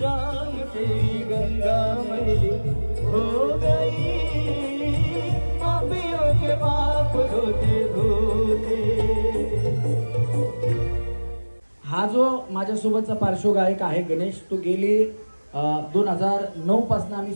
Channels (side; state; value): both; inverted; correlation -1.00